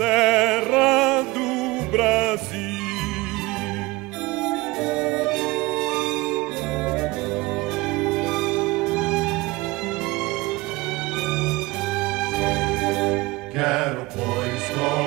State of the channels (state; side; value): quieter; left; 22.1 dB